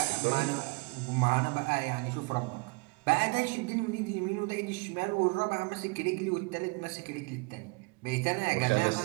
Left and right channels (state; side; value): quieter; left; 28.6 dB